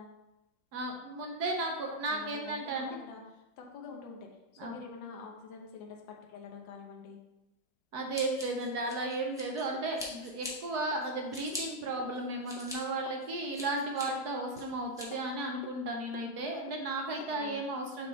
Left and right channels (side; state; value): both; normal; correlation -0.01